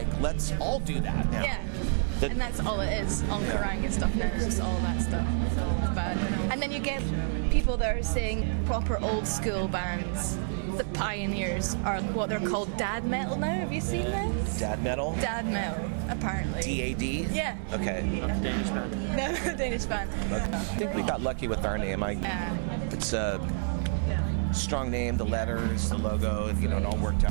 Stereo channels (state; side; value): silent; left; 55 dB below the other